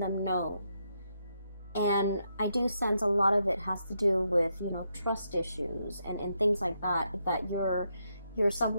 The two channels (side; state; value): both; inverted; correlation -0.80